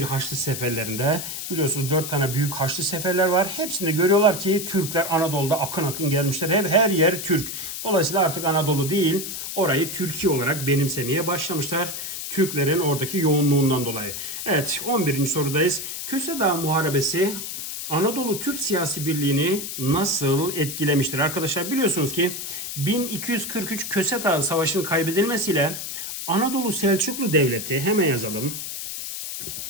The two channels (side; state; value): left; noise; hiss, 6 dB below the sound